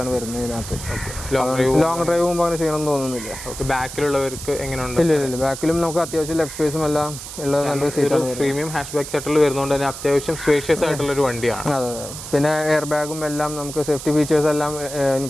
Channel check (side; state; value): right; noise; hiss, 10 dB below the sound